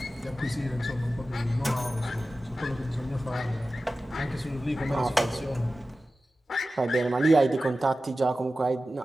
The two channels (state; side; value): normal; both; correlation 0.95